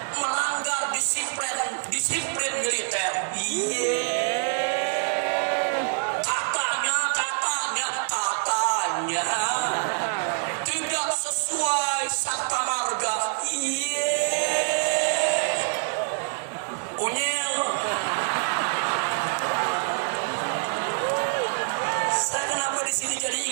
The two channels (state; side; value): silent; left; digital silence